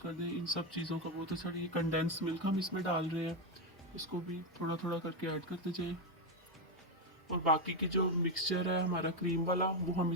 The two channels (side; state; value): both; normal; correlation 0.06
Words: दें। इन सब चीज़ों का बहुत अच्छा। ये कंडेंस मिल्क हम इसमें डाल रहे हैं, इसको भी थोड़ा थोड़ा करके ऐड करते जाएं। और बाकी की जो मिक्सचर है हमारा क्रीम वाला, वो हम